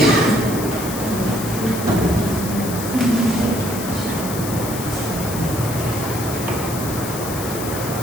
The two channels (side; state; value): left; noise; hiss, 8 dB below the sound